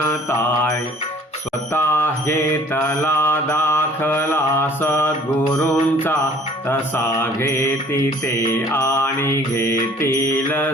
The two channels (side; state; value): both; normal; correlation 0.53